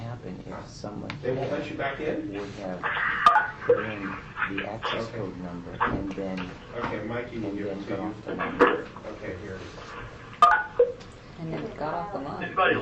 is someone They won't let you back in? would have put in the access code number and then Okay, Mikey will give it to got you. off the number. Okay, here. And then it got off the line. Anybody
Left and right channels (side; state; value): both; identical; correlation 1.00